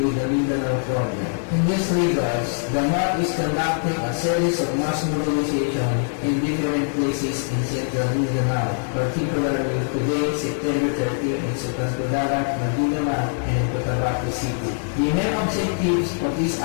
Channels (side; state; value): right; silent; digital silence